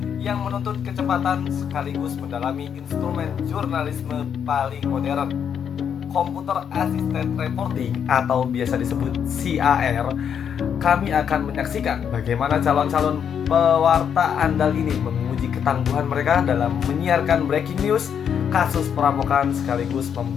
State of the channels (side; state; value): right; quieter; 8.0 dB